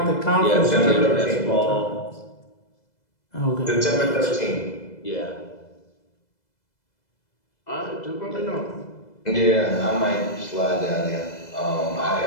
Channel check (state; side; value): late; right; 2.0 ms